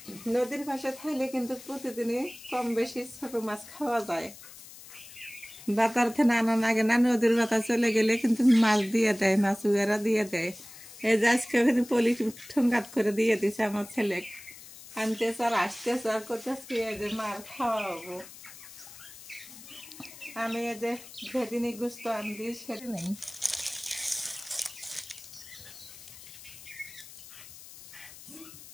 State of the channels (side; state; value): left; noise; hiss, 17 dB below the sound